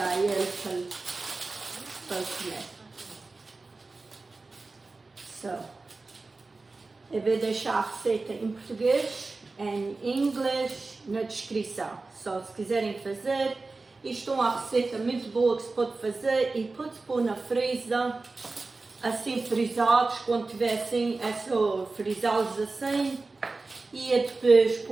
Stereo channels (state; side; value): quieter; left; 3.6 dB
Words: ele para comer. So, eu vou deixar a receita em português, em inglês, na descrição. Só se quiserem fazer. Isto é uma receita muito boa que se pode fazer e pode-se pôr na freezer, assim frisados, quando tiver assim, é só frisá-los assim e depois